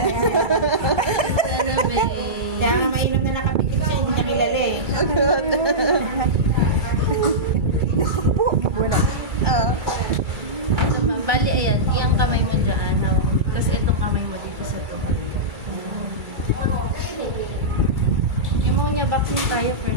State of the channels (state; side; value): late; left; 2.3 ms